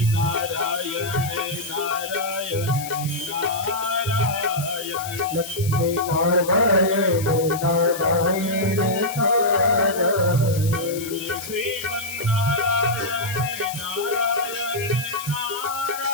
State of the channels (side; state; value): left; noise; hiss, 11 dB below the sound